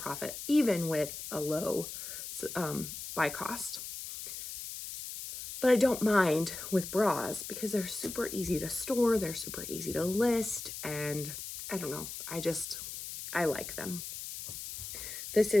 even with a low buy cost. But I don't mind with bras because they're super easy to store, they're super easy to list, and I don't know, I like them. This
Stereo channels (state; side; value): noise; left; hiss, 8 dB below the sound